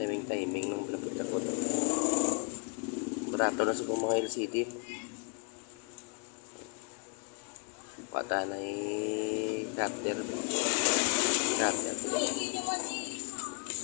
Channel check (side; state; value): right; quieter; 37.2 dB